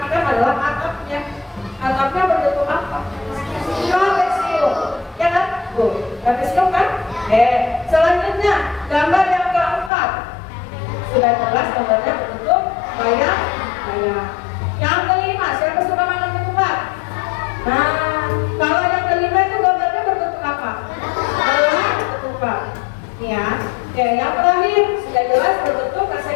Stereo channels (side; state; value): right; drops out; at 9.9 s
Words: adalah atapnya. Atapnya berbentuk apa? Trapesium, ya kan? Tuh, trapesium kan? Selanjutnya gambar yang keempat. Sudah jelas gambarnya berbentuk layang. Yang kelima, siapa suka makan ketupat? Nah, kalau yang kelima itu gambarnya berbentuk apa? Bola ketupat. Ya. Oke, yang terakhir sudah jelas berbentuk